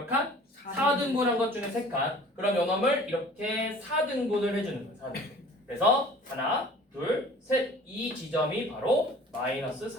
칸? 4등분한 것 중에 3칸. 그럼 요놈을 이렇게 4등분을 해주는 거예요. 4등분. 그래서 하나, 둘, 셋. 이 지점이 바로 마이너스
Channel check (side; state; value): both; normal; correlation 0.47